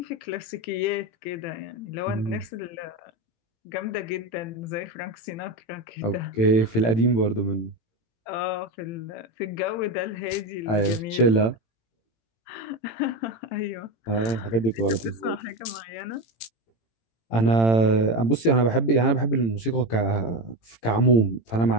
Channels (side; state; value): right; late; 18 ms